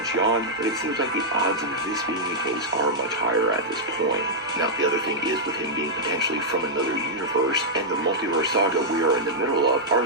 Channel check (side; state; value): both; normal; correlation -0.08